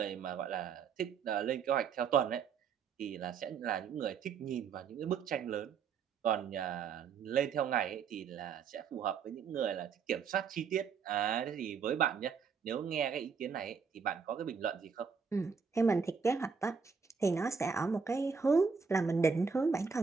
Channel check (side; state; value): left; quieter; 5.9 dB